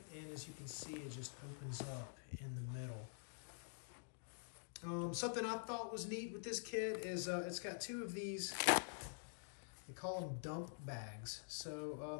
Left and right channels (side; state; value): right; silent; digital silence